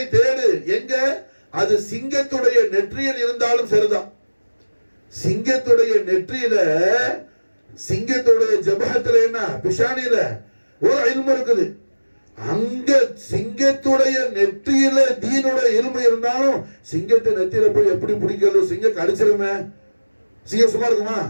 தேடு எங்க, அது சிங்கத்துடைய நெற்றியில் இருந்தாலும் சரிதான். சிங்கத்துடைய நெற்றியில, சிங்கத்துடைய ஜபஹத்துல என்ன பிஷானில ஒரு இல்மு இருக்குது. அங்க சிங்கத்துடைய நெற்றியில தீனுடைய இல்மு இருந்தாலும் சிங்கத்தை நெத்தியில போய் எப்படி பிடிக்கிறது, சிங்கம் கடிச்சிருமே, சிங்கம் சும்மா இருக்குமா?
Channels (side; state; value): both; inverted; correlation -1.00